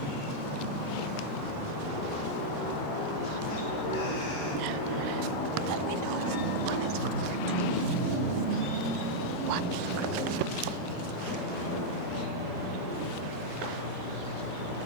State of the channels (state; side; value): normal; both; correlation -0.04